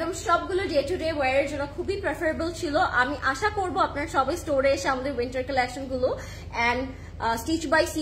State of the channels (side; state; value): both; identical; correlation 1.00